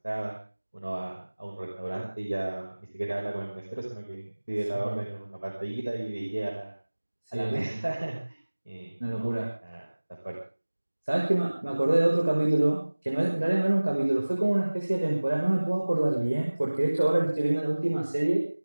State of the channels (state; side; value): inverted; both; correlation -1.00